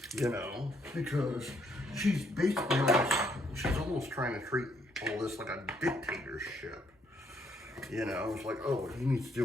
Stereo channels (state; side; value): normal; both; correlation 0.71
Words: you know, because she's basically almost trying to treat all this like a dictatorship. You know, it's like, oh, you need to